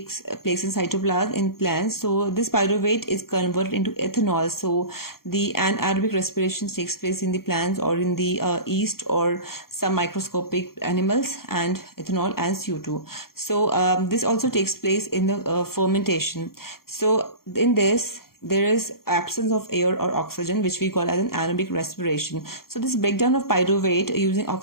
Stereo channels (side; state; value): right; late; 0.93 ms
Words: place in cytoplasm in plants. So this pyruvate is converted into ethanol. So the anaerobic respiration takes place in the plants or in the yeast or some microscopic animals, and ethanol and CO2. So this also takes place in the fermentation. So in this there is absence of air or oxygen, which we call as an anaerobic respiration. So this breakdown of pyruvate using